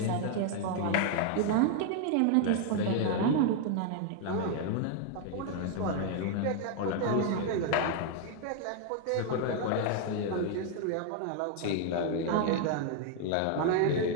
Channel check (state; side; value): different; both; correlation 0.00